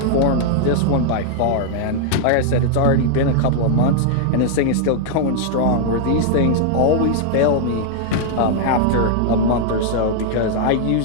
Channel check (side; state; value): both; different; correlation -0.01